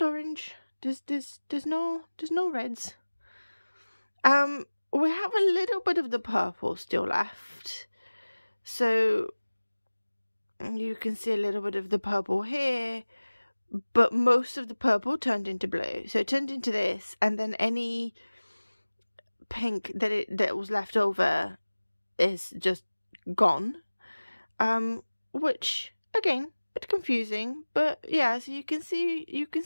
orange. There's no reds. We have a little bit of the purple still left, so you can see a little bit of the purple here, but most of the purple turned into blue. So it turned into this, and then any pink that was left over is just gone. Which again, bit confusing, but yeah, so you can see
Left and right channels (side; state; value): both; inverted; correlation -1.00